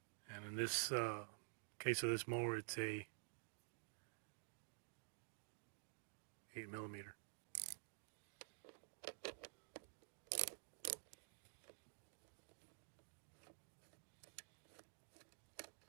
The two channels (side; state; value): left; silent; digital silence